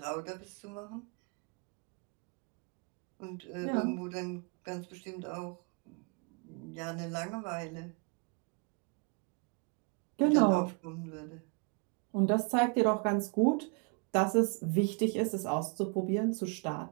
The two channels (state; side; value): quieter; left; 34.4 dB